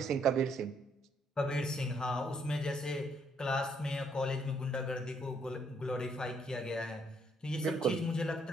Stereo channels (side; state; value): both; normal; correlation 0.70